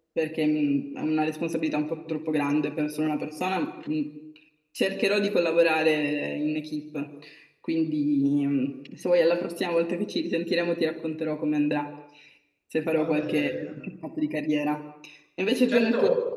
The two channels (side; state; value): both; identical; correlation 1.00